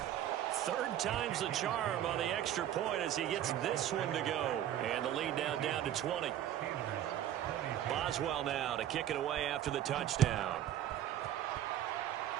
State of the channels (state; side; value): quieter; left; 11.6 dB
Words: Third time's the charm on the extra point as he gets this one to go. And the lead now down to 20. Boswell now to kick it away after the touchdown.